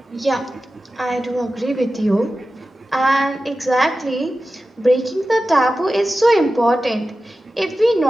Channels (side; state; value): both; normal; correlation 0.94